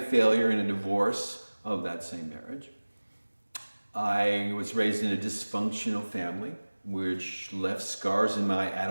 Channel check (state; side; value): inverted; both; correlation -1.00